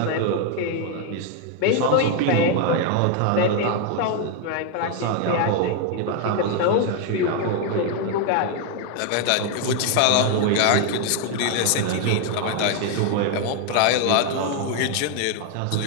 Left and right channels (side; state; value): both; different; correlation 0.01